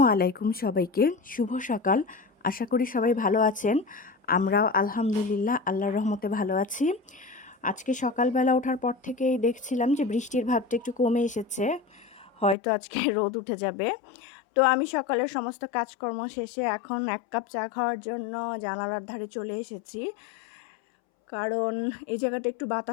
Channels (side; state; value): right; drops out; at 12.6 s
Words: আলাইকুম সবাইকে। শুভ সকাল। আশা করি সবাই ভালো আছেন। আমরাও আলহামদুলিল্লাহ আল্লাহর রহমতে ভালো আছি। আজকে সকালবেলা ওঠার পর থেকেই দেখছিলাম যে বৃষ্টির ভাবটা একটু কমে এসেছে। হয়তো আজকে রোদ উঠে যাবে। তো আমি সকালের সমস্ত কাজকর্ম শেষে এখন ১ কাপ চা খাওয়ার জন্য জানালার ধারে চলে এসেছি। কারণ এই জায়গাটা একটু